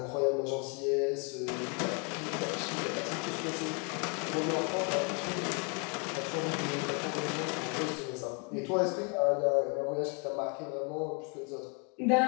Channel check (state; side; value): quieter; right; 35.1 dB